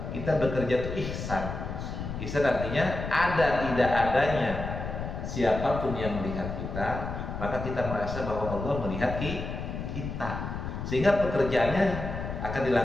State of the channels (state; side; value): noise; left; rumble, 6 dB below the sound